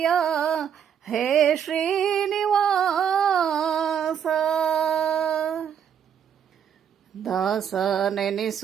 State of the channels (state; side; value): quieter; left; 8.3 dB